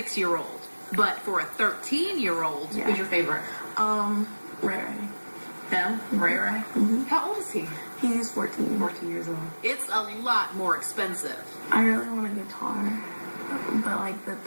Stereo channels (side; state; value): both; inverted; correlation -1.00